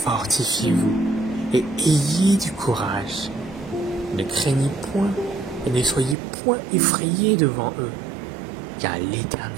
et ayez du courage. Ne craignez point et ne soyez point effrayés devant eux, car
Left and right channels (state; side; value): drops out; left; at 6.2 s